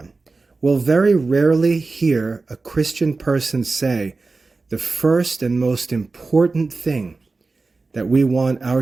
We'll very rarely hear a Christian person say, the first and most important thing that we want our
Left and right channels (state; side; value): quieter; left; 3.8 dB